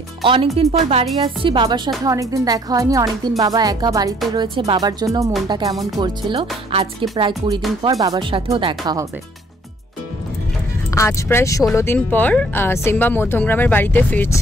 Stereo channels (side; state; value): both; normal; correlation 0.61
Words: অনেকদিন পর বাড়ি আসছি, বাবার সাথে অনেকদিন দেখা হয়নি। অনেকদিন বাবা একা বাড়িতে রয়েছে, বাবার জন্য মনটা কেমন করছিল। আজকে প্রায় 20 দিন পর বাবার সাথেও দেখা হবে। আজ প্রায় 16 দিন পর সিম্বা মধ্যমগ্রামের বাড়িতে